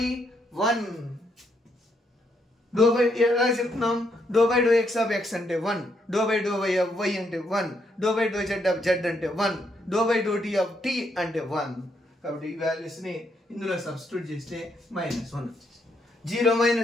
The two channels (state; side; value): normal; both; correlation 0.75